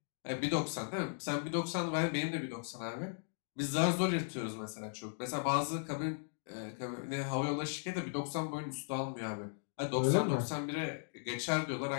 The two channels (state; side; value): silent; right; digital silence